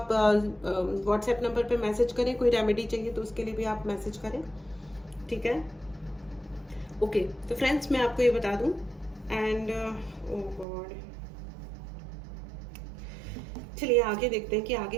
व्हाट्सएप नंबर पे मैसेज करें। कोई रेमेडी चाहिए तो उसके लिए भी आप मैसेज करें। ठीक है, ओके। तो फ्रेंड्स, मैं आपको ये बता दूं, एंड ओ गॉड, चलिए आगे देखते हैं कि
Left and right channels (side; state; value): left; drops out; at 10.7 s